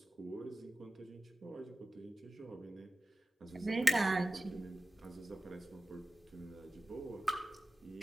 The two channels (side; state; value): both; normal; correlation 0.96